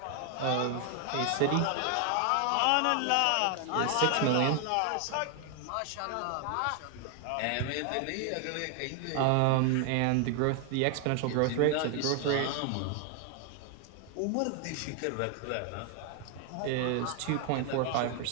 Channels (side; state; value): both; different; correlation 0.00